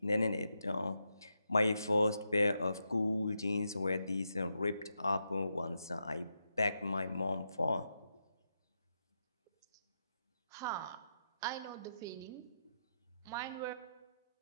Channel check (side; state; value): both; inverted; correlation -0.84